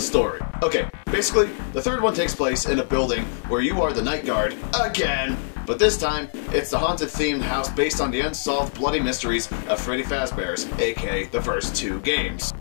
story. Okay, basically, the third one takes place in a building where you are the night guard again. But this time, it's the haunted-themed house based on the unsolved bloody mysteries of Freddy Fazbear's, aka the first 2 games.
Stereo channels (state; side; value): silent; right; digital silence